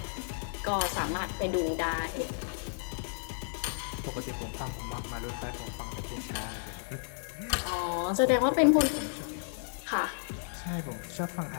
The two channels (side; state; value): right; silent; 56 dB below the other